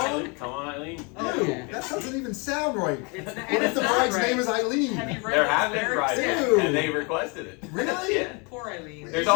Come on, Eileen. Oh, Dude, yeah. that doesn't even sound right. It's not, What and if it's the not bride's right. name is Eileen? Have you read There those have been lyrics? brides, Dude. and they requested it. Really? Yeah. Poor Eileen. There's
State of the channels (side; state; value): right; quieter; 31.7 dB